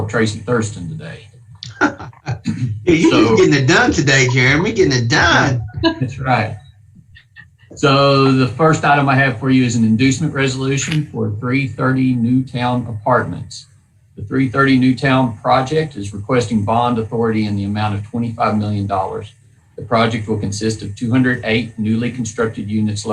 of Tracy Thurston today. Yeah, you're just getting it done today, Jeremy. Getting it done. That's right. So the first item I have for you is an inducement resolution for 330 Newtown Apartments. The 330 Newtown project is requesting bond authority in the amount of $25 million. The project will consist of 208 newly constructed units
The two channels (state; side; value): identical; both; correlation 1.00